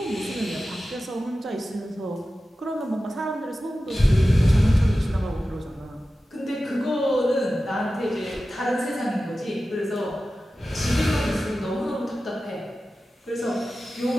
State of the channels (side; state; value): both; normal; correlation 0.94